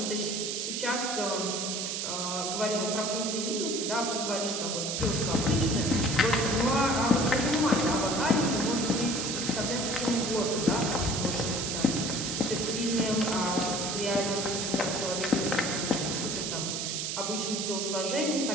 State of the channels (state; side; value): noise; right; hiss, 2 dB below the sound